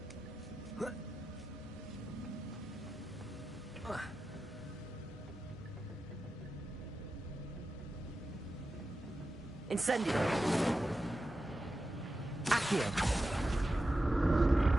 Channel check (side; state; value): both; normal; correlation 0.91